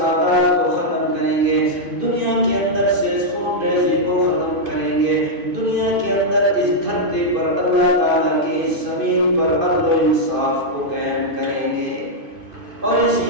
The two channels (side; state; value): left; late; 2.5 ms